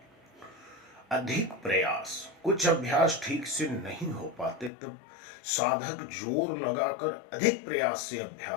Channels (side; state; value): right; drops out; at 4.7 s